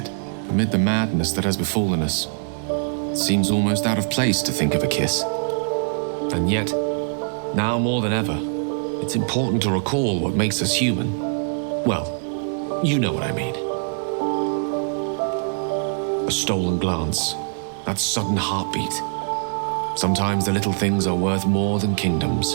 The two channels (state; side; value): silent; left; digital silence